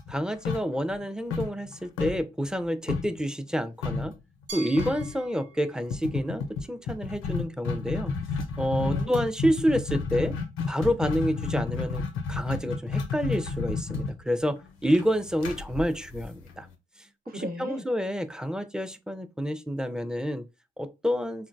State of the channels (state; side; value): normal; both; correlation 0.86